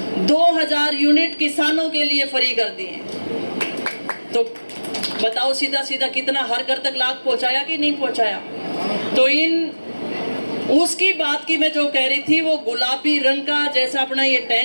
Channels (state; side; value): inverted; both; correlation -1.00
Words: 2000 यूनिट किसानों के लिए फ्री कर दिए। तो बताओ सीधा सीधा कितना हर घर तक लाभ पहुंचाया कि नहीं पहुंचाया। तो इन उसकी बात की मैं जो कह रही थी, वो गुलाबी रंग का जैसा अपना ये